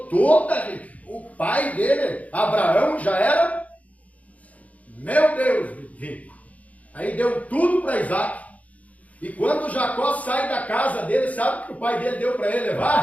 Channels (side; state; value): right; late; 0.070 ms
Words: toda a riqueza. O pai dele, Abraão, já era, meu Deus, rico. Aí deu tudo para Isaac. E quando Jacó sai da casa dele, sabe o que o pai dele deu para ele